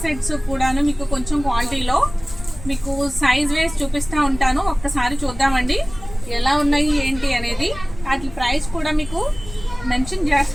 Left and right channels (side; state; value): left; noise; rumble, 15 dB below the sound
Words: సెట్స్ కూడాను మీకు కొంచెం క్వాలిటీలో మీకు సైజ్ వేస్ చూపిస్తూ ఉంటాను. ఒక్కసారి చూద్దామండి ఎలా ఉన్నాయి ఏంటి అనేది. వాటి ప్రైస్ కూడా మీకు మెన్షన్